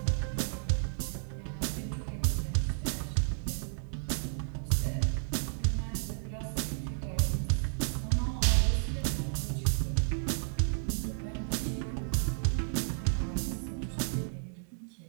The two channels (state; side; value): silent; left; digital silence